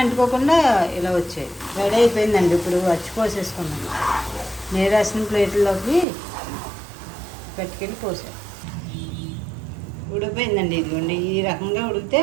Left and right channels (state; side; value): drops out; left; at 6.1 s